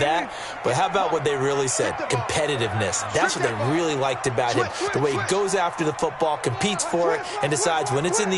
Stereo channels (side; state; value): both; identical; correlation 1.00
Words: But how about what they really said? Competitiveness. That's what they really liked about him. The way he goes after the football, competes for it, and decides when it's in